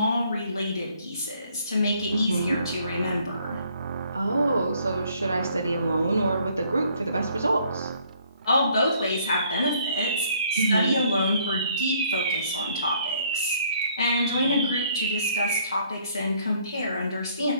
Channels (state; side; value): inverted; both; correlation -0.63